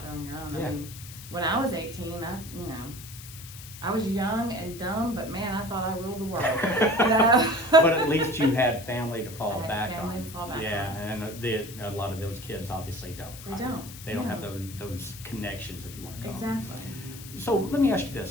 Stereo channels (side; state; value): left; noise; hiss, 15 dB below the sound